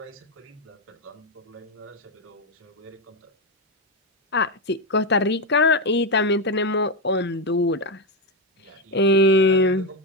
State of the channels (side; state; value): both; normal; correlation 0.08